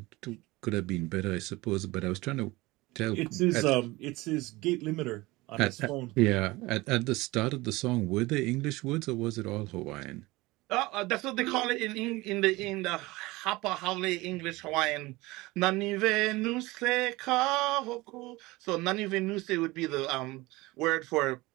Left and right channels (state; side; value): quieter; left; 21.1 dB